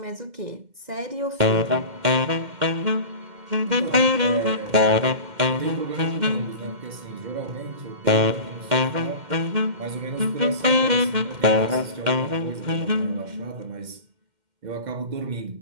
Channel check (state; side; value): late; left; 2.1 ms